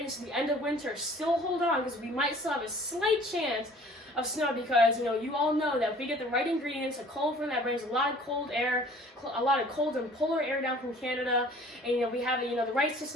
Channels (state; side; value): normal; both; correlation 0.51